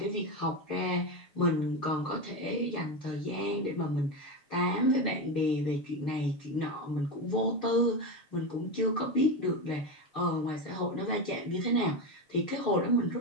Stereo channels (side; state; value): right; late; 6.5 ms